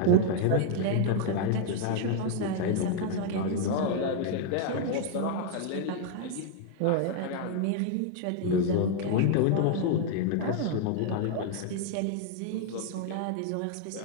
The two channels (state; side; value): different; both; correlation 0.00